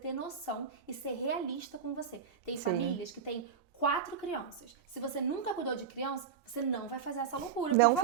noção e ser realista com você. Tem famílias que têm 4 crianças. Se você nunca cuidou de criança, você não vai fazer essa loucura, por Não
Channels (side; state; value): left; quieter; 7.1 dB